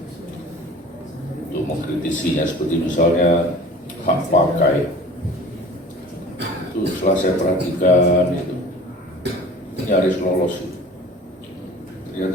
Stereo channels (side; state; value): both; normal; correlation 0.43